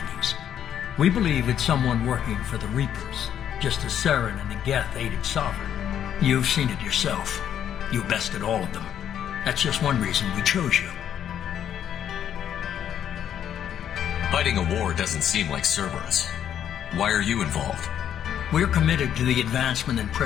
We believe it's someone working for the Reapers, just as Saren and the Geth aided Sovereign. You've seen it yourself. You bested all of them. That's just one reason we chose you. Fighting a war doesn't seem like Cerberus. Why are you involved? We're committed to the advancement and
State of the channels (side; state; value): right; quieter; 9.7 dB